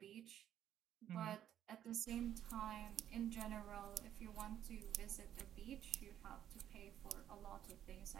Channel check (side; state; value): left; quieter; 10.8 dB